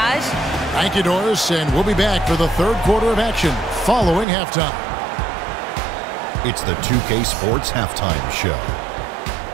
Thank you, Doris, and we'll be back for the third quarter of action following halftime. It's the 2K Sports Halftime Show.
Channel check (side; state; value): left; drops out; at 4.2 s